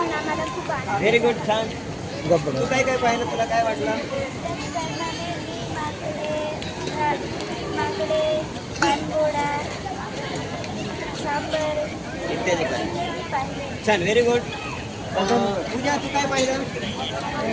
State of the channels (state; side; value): identical; both; correlation 1.00